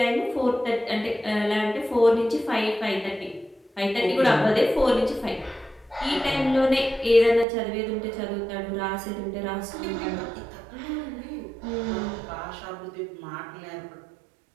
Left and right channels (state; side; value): drops out; left; at 7.5 s